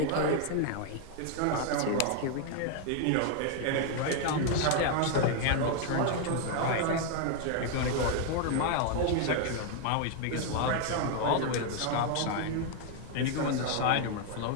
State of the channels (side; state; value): both; different; correlation 0.00